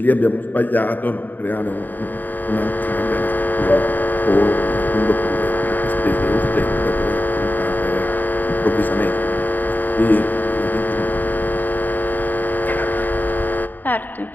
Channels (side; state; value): right; late; 0.087 ms